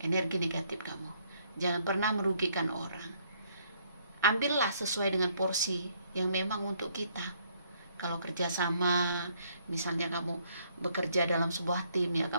energi negatif kamu. Jangan pernah merugikan orang. Ambillah sesuai dengan porsi yang memang untuk kita. Kalau kerjasama, misalnya kamu bekerja dalam sebuah tim, ya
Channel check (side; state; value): both; inverted; correlation -0.67